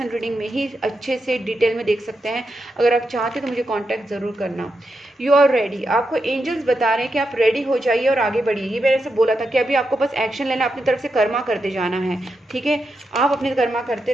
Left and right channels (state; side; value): normal; both; correlation 0.86